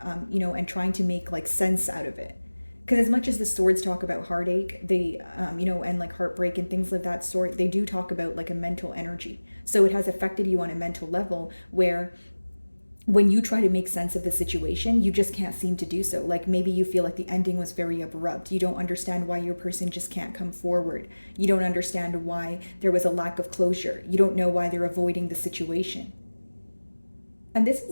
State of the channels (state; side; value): inverted; both; correlation -1.00